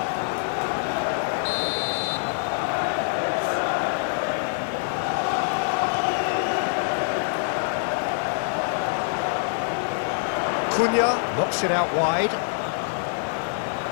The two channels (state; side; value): silent; right; digital silence